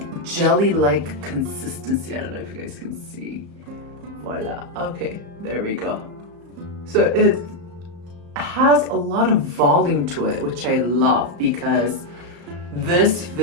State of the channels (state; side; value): late; left; 34 ms